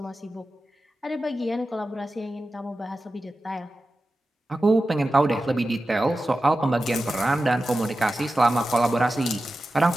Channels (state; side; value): normal; both; correlation 0.93